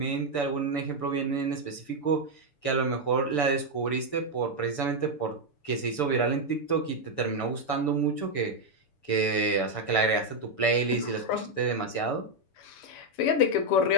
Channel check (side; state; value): right; late; 6.9 ms